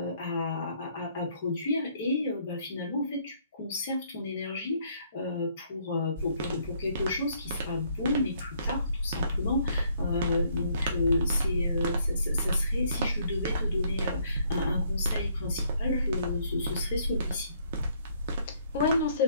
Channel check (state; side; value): inverted; both; correlation -0.66